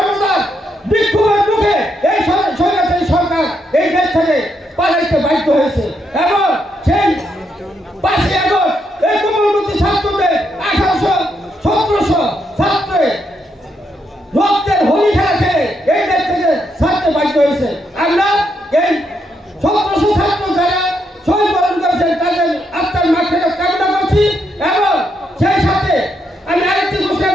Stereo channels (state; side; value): normal; both; correlation 0.79